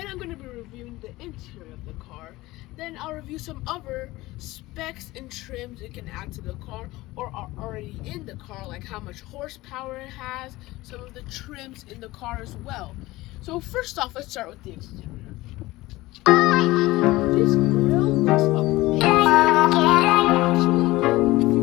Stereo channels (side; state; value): right; quieter; 19.0 dB